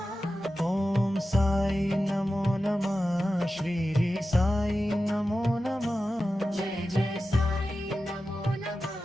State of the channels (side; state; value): both; normal; correlation 0.93